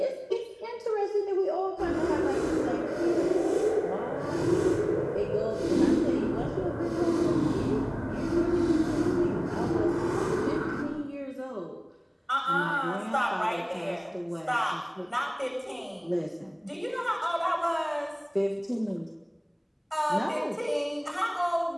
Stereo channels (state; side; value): identical; both; correlation 1.00